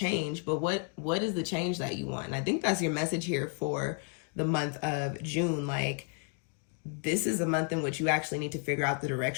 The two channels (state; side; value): quieter; right; 37.6 dB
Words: but what is the change that you want? And I think that's your message here for the month of June. Like, this is a month in which you actually need to figure out the